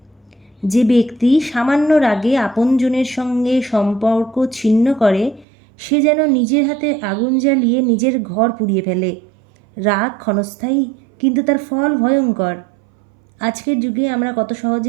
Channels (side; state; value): left; drops out; at 5.5 s